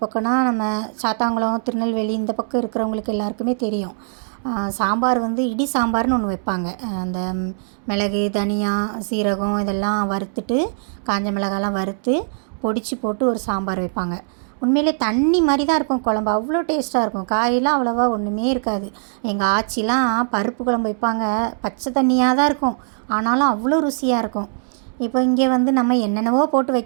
பக்கம்னா நம்ம சாத்தாங்குளம், திருநெல்வேலி இந்த பக்கம் இருக்கிறவங்களுக்கு எல்லாருக்குமே தெரியும். சாம்பார் இடி சாம்பார்னு ஒன்று வைப்பாங்க. அந்த மிளகு, தனியா, சீரகம் இதெல்லாம் வறுத்துட்டு, காஞ்ச மிளகாலாம் வறுத்து பொடிச்சு போட்டு ஒரு சாம்பார் வைப்பாங்க. உண்மையிலே தண்ணி மாதிரி தான் இருக்கும் குழம்பு. அவ்வளோ டேஸ்ட்டாக இருக்கும். காயெல்லாம் அவ்வளோவா ஒன்றுமே இருக்காது. எங்கள் ஆச்சிலாம் பருப்பு குழம்பு வைப்பாங்க. பச்சை தண்ணியாக தான் இருக்கும், ஆனாலும் அவ்வளோ ருசியாக இருக்கும். இப்போ இங்கே நம்ம என்னென்னவோ போட்டு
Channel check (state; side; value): silent; left; digital silence